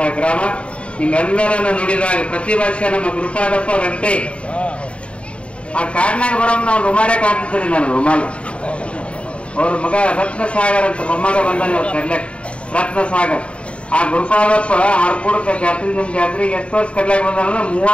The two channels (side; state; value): right; late; 0.060 ms